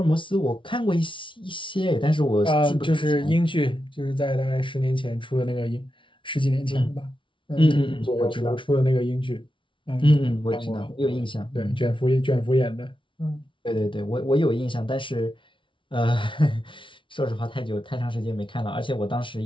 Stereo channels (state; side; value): late; right; 0.25 ms